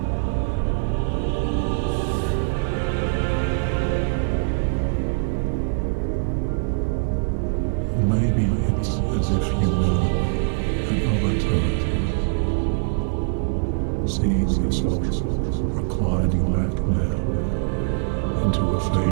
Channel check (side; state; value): left; silent; digital silence